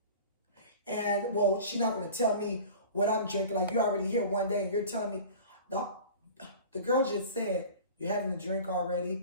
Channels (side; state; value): both; inverted; correlation -0.40